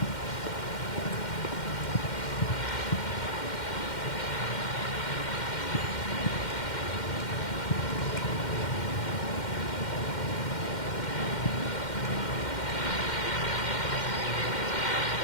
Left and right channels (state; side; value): late; right; 2.1 ms